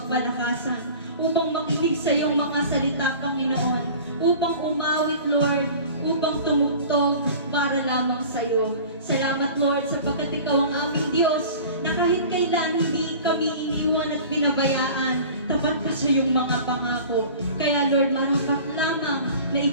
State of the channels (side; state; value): both; inverted; correlation -0.41